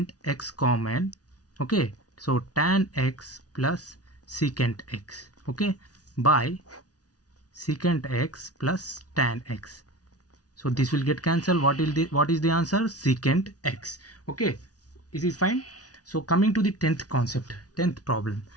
x common. Okay, so tan x plus secant x. Okay, by secant x plus tan x. So this will get cancelled. What is the answer? Secant x. Okay, is it fine? So coming to the 10th concept, 10th problem,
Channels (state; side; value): late; right; 0.68 ms